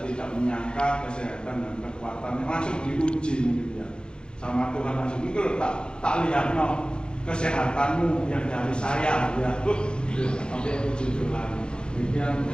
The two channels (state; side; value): late; right; 0.050 ms